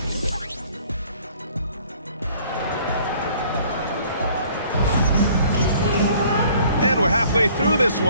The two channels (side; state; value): both; inverted; correlation -0.56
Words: And we're halfway through this